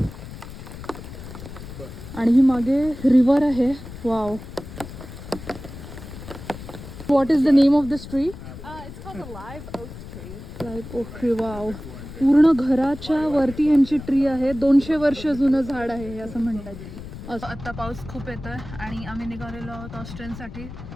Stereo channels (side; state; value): left; noise; rumble, 13 dB below the sound